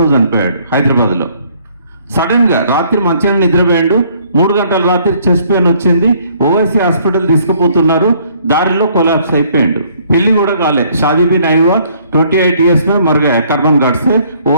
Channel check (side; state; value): both; inverted; correlation -0.62